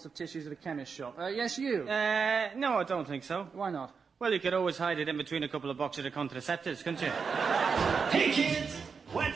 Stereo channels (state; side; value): quieter; left; 5.6 dB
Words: of tissues at a chemist shop? Yes, you? No, I don't think so. Why not? Well, you could always hide it in between a couple of boxes of contraceptives, couldn't you? Hey, kids,